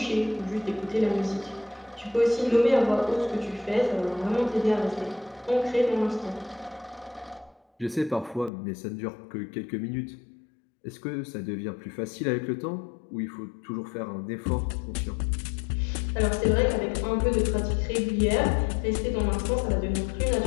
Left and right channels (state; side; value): drops out; right; at 8.5 s